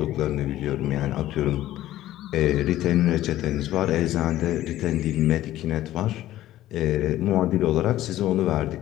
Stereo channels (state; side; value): quieter; right; 14.2 dB